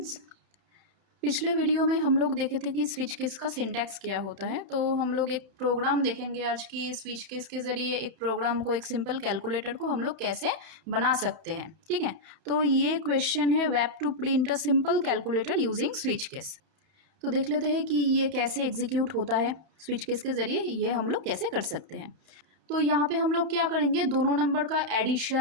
पिछले वीडियो में हम लोग देखे थे कि स्विच केस का सिंटैक्स क्या होता है। तो हम लोग एक प्रोग्राम देखेंगे आज की स्विच केस के ज़रिए एक प्रोग्राम को, एक सिंपल कैलकुलेटर को हम लोग कैसे बना सकते हैं। ठीक है, तो ये क्वेश्चन है web two print a simple calculator using switch case. तो देख लेते हैं कि ये कैसे एग्जीक्यूट होता है। स्विच केस के ज़रिए ये हम लोग कैसे कर सकते हैं। तो यहाँ पे हम लोग क्या करेंगे, दोनों नंबर का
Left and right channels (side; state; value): left; late; 30 ms